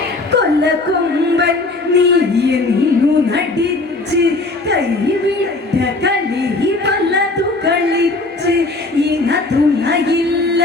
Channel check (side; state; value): right; quieter; 3.2 dB